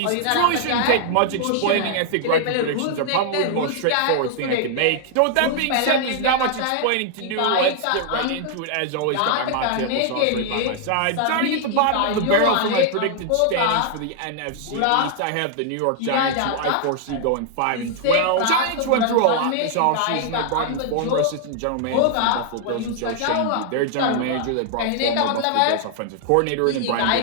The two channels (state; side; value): different; both; correlation 0.00